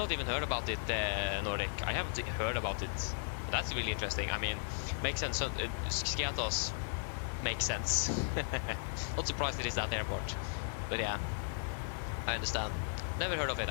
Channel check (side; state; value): right; silent; digital silence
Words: even heard about it, Nordic. I haven't heard about it. That's really interesting. I mean, makes sense. Skiatos makes sense. Not surprised it is that airport. But yeah, I understand. Never heard of it,